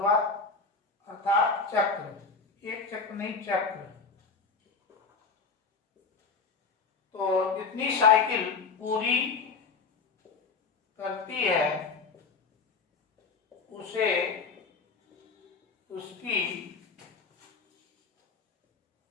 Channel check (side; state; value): right; quieter; 4.7 dB